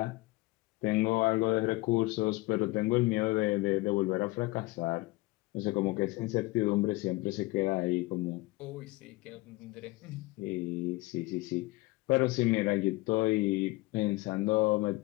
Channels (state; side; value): quieter; right; 21.5 dB